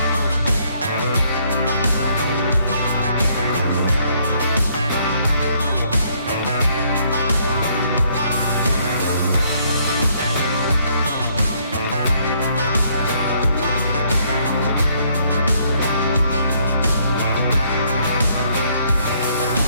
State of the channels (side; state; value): both; inverted; correlation -0.67